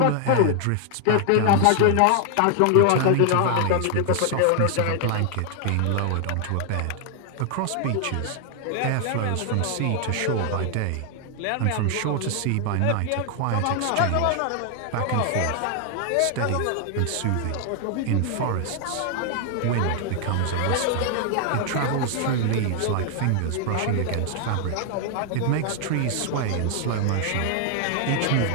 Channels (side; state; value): both; different; correlation 0.00